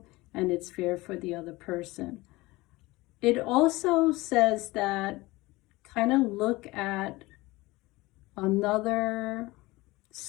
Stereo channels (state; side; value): quieter; right; 20.9 dB